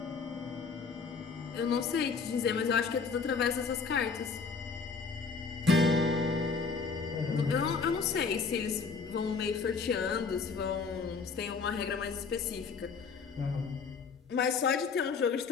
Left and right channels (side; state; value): right; quieter; 5.1 dB